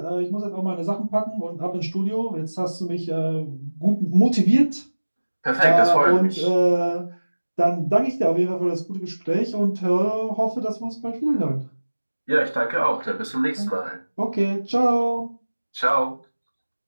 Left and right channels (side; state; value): both; inverted; correlation -1.00